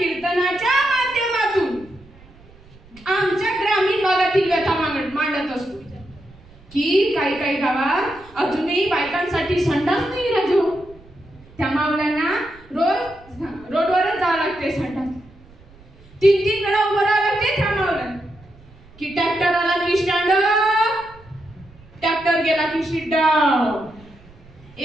माध्यमातून आमच्या ग्रामीण भागातील व्यथा मांडत असतो की काही गावात अजूनही बायकांसाठी संडास नाही राजो. त्या मावल्यांना रोडवरच जावं लागते संडास. 3-3 वेळा उभं राहावं लागते त्या मावल्यांना. की ट्रॅक्टर आला की स्टँड, ट्रॅक्टर गेला की सीट डाऊन.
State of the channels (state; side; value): noise; right; rumble, 24 dB below the sound